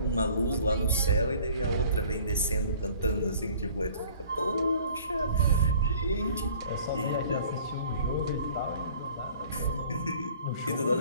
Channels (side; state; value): both; inverted; correlation -0.51